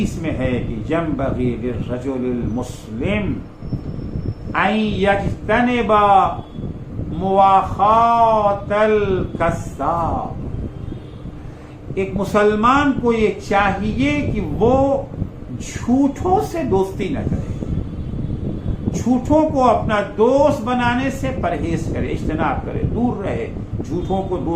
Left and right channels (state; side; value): identical; both; correlation 1.00